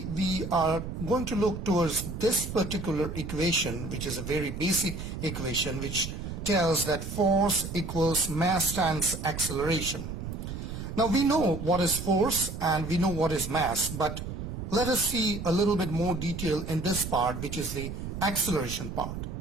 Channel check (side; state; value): right; noise; rumble, 7 dB below the sound